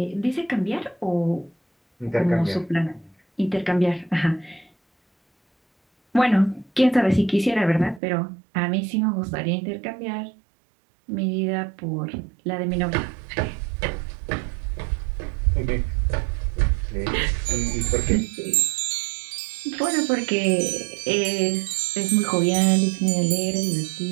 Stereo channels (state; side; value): drops out; left; at 8.0 s